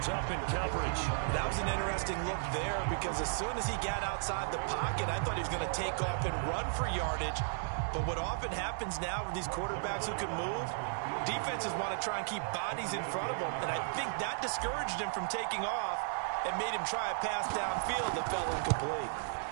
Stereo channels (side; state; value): left; silent; digital silence